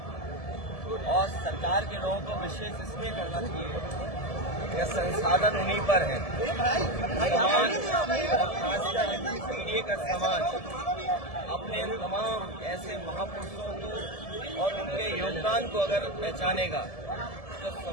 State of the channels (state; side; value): late; right; 1.7 ms